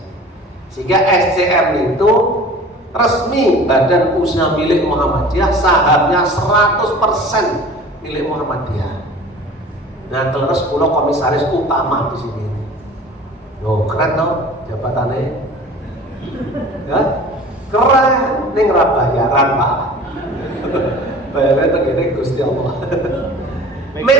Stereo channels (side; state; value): both; normal; correlation 0.42